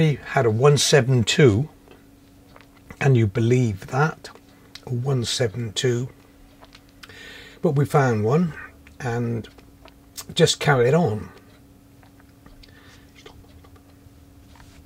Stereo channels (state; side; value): identical; both; correlation 1.00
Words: had a 172, can you believe that? A 172. But we found one and just carried on.